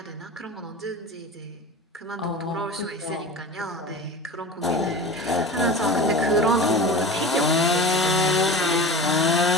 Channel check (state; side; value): normal; both; correlation 0.33